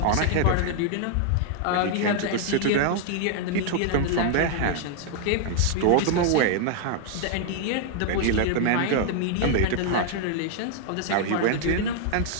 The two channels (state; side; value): different; both; correlation 0.00